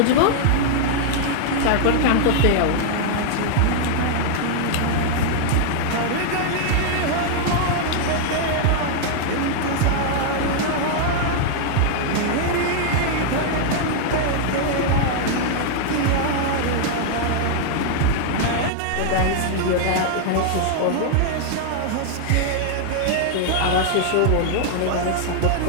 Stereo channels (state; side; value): different; both; correlation -0.01